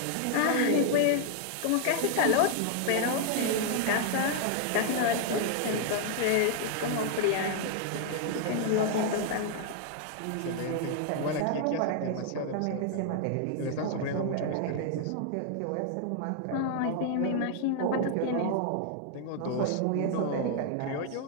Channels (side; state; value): both; different; correlation 0.00